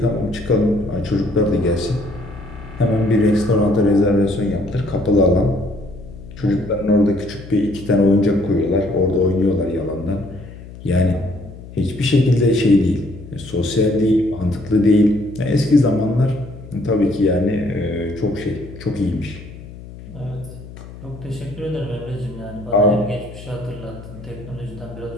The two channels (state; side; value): noise; left; hum, 15 dB below the sound